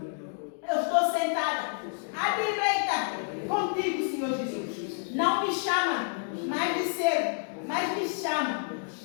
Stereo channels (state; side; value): silent; right; digital silence